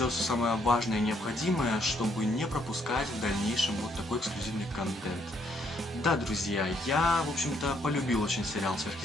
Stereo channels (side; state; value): both; normal; correlation 0.71